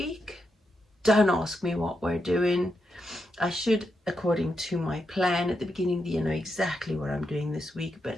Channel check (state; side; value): normal; both; correlation 0.84